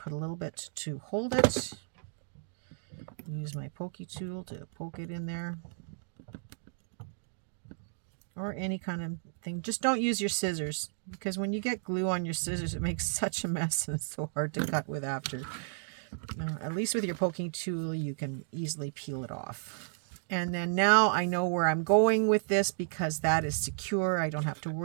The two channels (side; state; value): left; silent; digital silence